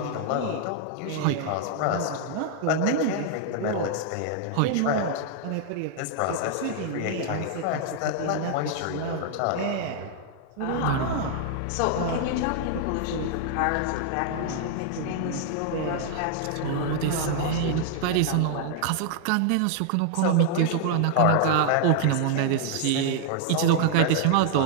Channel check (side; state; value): both; different; correlation 0.00